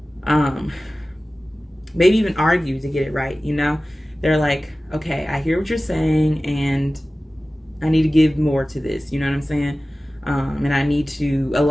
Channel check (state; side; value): normal; both; correlation 0.96